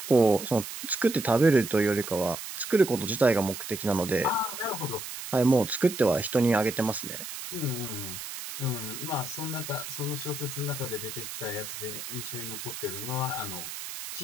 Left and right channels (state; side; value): noise; right; hiss, 9 dB below the sound